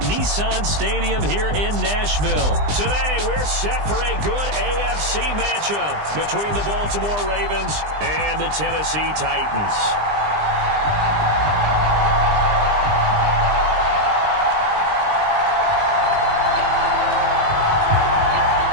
Nissan Stadium here in Nashville. Today, we're set for a good AFC matchup between the Baltimore Ravens and the Tennessee Titans.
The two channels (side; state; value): left; late; 20 ms